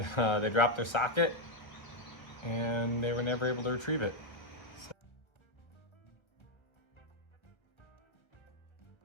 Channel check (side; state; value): right; late; 1.6 ms